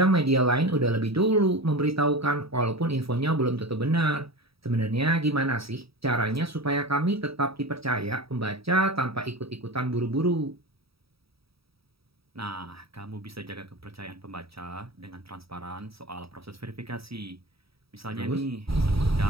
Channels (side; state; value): left; late; 0.77 ms